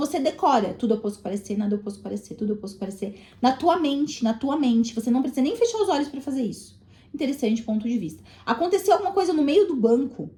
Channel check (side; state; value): both; identical; correlation 1.00